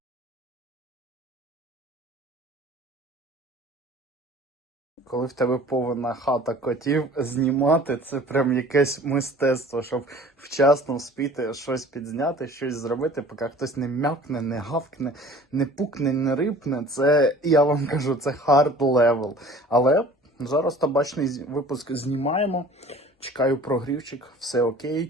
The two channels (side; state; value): both; normal; correlation 0.47